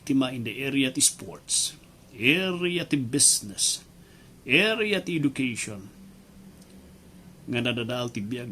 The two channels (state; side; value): identical; both; correlation 1.00